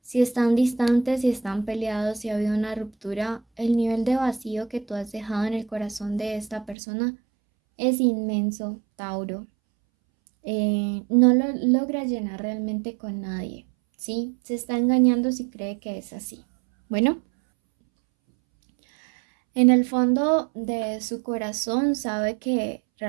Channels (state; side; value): drops out; left; at 6.8 s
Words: si están distantes, si están peleados, si ha habido una ruptura, el nivel de vacío que tú has dejado en el corazón de esta persona es inmenso, Tauro. No lo logra llenar realmente con nadie. Sí, se está engañando si cree que es así. Bueno, en el fondo de su corazón sabe que